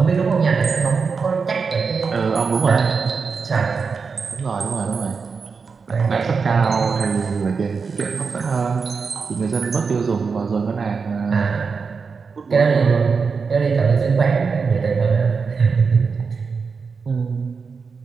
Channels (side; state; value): left; quieter; 5.2 dB